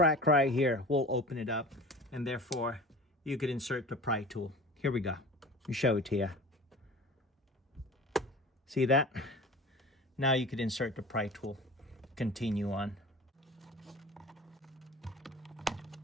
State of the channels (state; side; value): normal; both; correlation 0.38